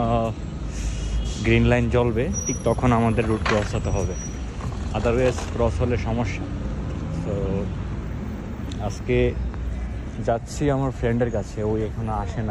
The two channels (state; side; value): identical; both; correlation 1.00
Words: গ্রিন লাইন জ্বলবে ঠিক তখন আমাদের রুট ক্রস হতে হবে, আদারওয়াইজ ক্রস হলে সমস্যা। তো আজকে যাচ্ছি আমার ফ্রেন্ডের কাছে, ওই এখনো আসে